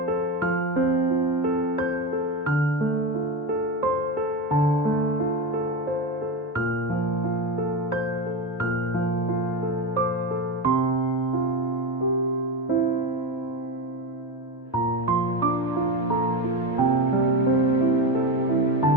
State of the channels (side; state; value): both; normal; correlation 0.18